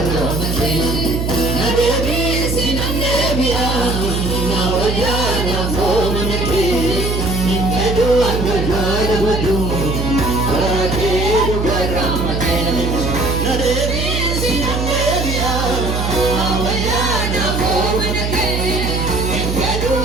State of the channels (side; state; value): right; noise; hum, 1 dB below the sound